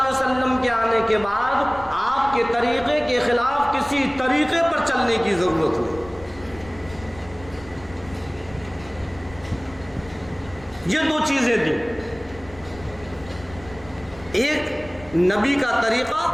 علیہ وسلم کے آنے کے بعد آپ کے طریقے کے خلاف کسی طریقے پر چلنے کی ضرورت نہیں۔ یہ دو چیزیں دی، ایک نبی کا طریقہ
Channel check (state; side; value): noise; left; rumble, 19 dB below the sound